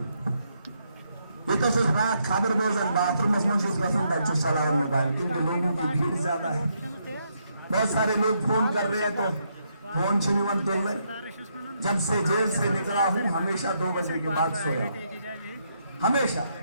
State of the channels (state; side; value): inverted; both; correlation -0.77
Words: ये तो सिर्फ रात खबर बोझन बाथरूम में चलाओ मोबाइल, क्योंकि लोगों की भीड़ ज्यादा है। बहुत सारे लोग फोन कर रहे हैं तो फोन छुनिवन तुल रहे। जब से जेल से निकला हूं हमेशा 2 बजे के बाद सोया, हमेशा,